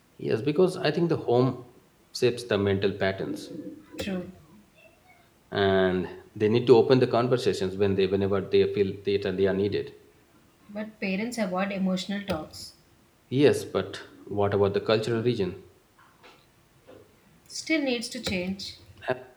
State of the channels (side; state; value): both; identical; correlation 1.00